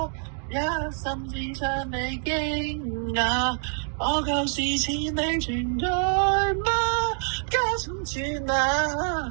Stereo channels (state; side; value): silent; left; 58 dB below the other